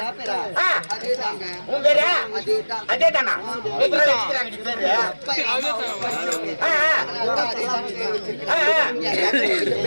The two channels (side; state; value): both; inverted; correlation -1.00